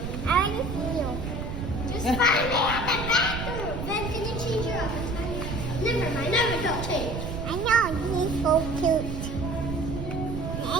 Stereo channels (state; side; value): noise; right; rumble, 5 dB below the sound